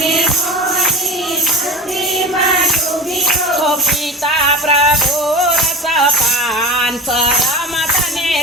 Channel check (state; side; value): normal; both; correlation 0.30